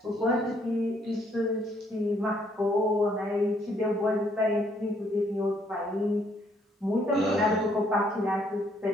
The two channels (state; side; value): normal; both; correlation 0.68